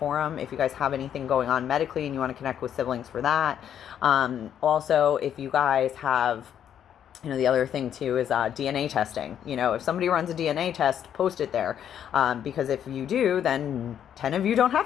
if you guys have anything going on medically and you want to connect with siblings for that. Also, if you guys have, the other thing too is DNA testing. If somebody runs a DNA test, post it there. Because if you do, then 10 of you don't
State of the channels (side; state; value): right; quieter; 9.5 dB